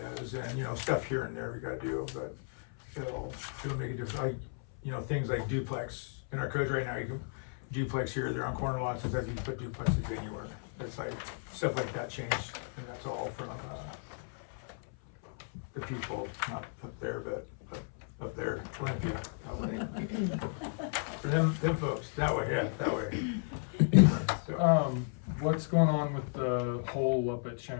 and, stuff here and there we gotta do, but it'll make a difference, things like duplex, in our codes right now, you can duplex here, they're on corner lots, sometimes you can put duplexes anywhere, it's like, stuff like that changed, and that's all from, the people, not up there, but up there, them folks, that way, yeah, that way. So, What's going on with the hole up at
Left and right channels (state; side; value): silent; right; 55 dB below the other